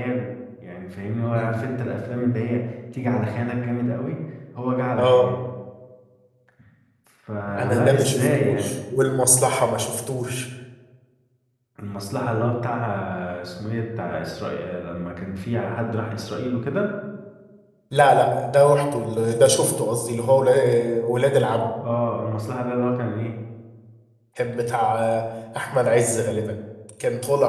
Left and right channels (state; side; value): identical; both; correlation 1.00